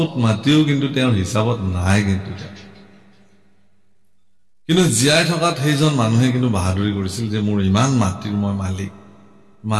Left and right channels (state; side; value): identical; both; correlation 1.00